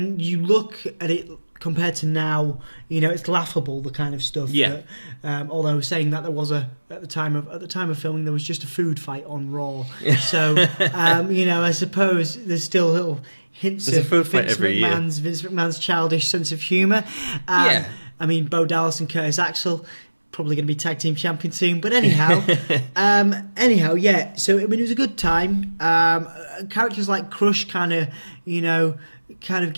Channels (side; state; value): both; inverted; correlation -1.00